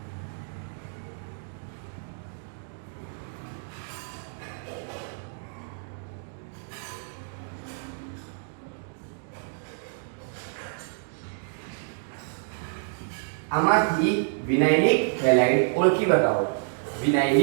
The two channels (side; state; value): left; silent; digital silence